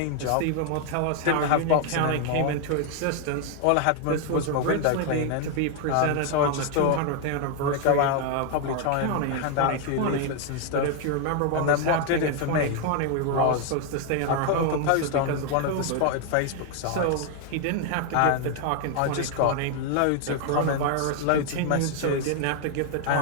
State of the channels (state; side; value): different; both; correlation 0.00